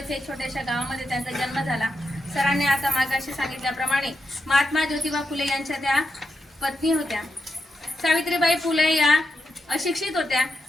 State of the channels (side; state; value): both; normal; correlation 0.85